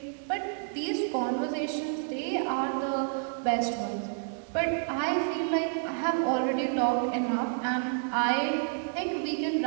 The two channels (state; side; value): silent; left; digital silence